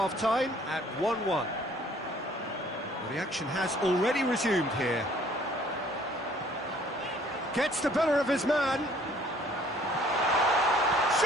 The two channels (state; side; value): normal; both; correlation 0.58